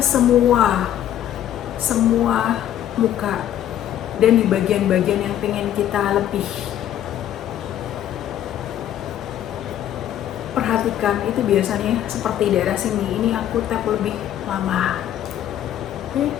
muka, dan di bagian-bagian yang pengen kita lebih perhatikan itu biasanya seperti daerah sini, ini aku tap lebih lama. Oke,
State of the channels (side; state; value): right; quieter; 11.3 dB